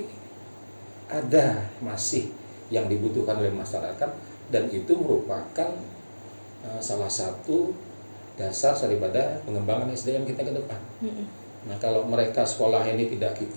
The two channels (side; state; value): both; inverted; correlation -1.00